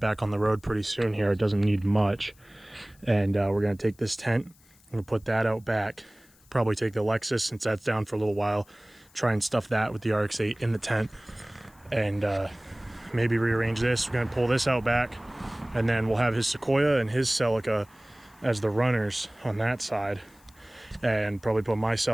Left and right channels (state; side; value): noise; left; hiss, 29 dB below the sound